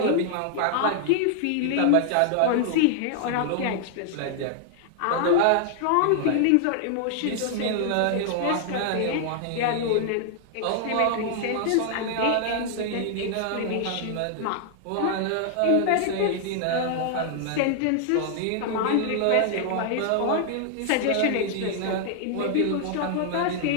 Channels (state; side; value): different; both; correlation 0.00